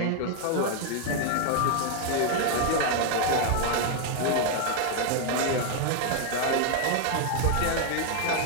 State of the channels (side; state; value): both; different; correlation 0.00